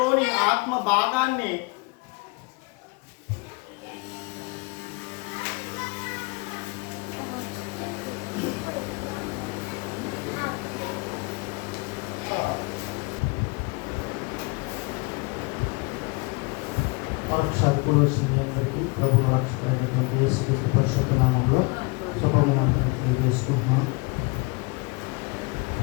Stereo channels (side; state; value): right; quieter; 28.9 dB